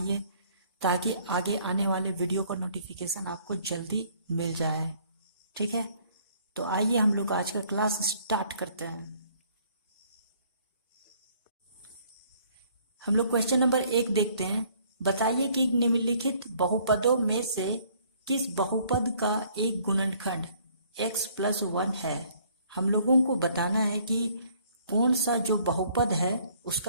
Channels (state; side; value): inverted; both; correlation -0.61